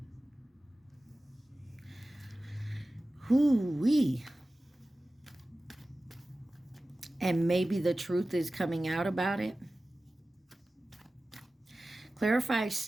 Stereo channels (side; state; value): both; normal; correlation 0.96